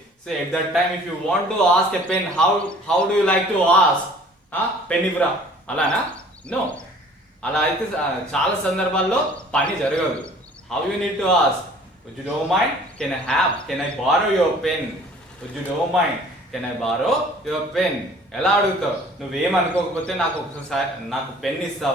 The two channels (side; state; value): both; normal; correlation 0.51